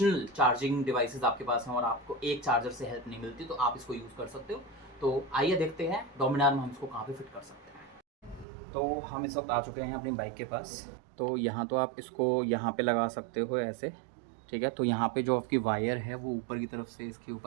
चार्जिंग डिवाइसेस आपके पास हैं और आपको एक चार्जर से हेल्प नहीं मिलती तो आप इसको यूज़ कर सकते हो। तो आइए देखते हैं डोमिनार में हम इसको कहाँ पे फिट कर सकते हैं। तो हम इस वक्त आ चुके हैं अपनी बाइक के पास। तो यहाँ तो आप इसको यहाँ पे लगा सकते हो ऐसे, ठीक है। तो यहाँ पे जो आपकी वायर है वो ऊपर की तरफ से इसके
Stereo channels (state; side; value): drops out; left; at 8.5 s